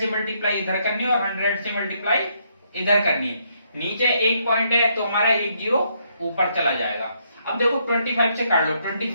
मल्टीप्लाई इधर करनी है और 100 से मल्टीप्लाई इधर करनी है। नीचे एक पॉइंट है तो हमारा एक जीरो ऊपर चला जाएगा। अब देखो 25 से काट लो।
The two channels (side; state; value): both; inverted; correlation -0.73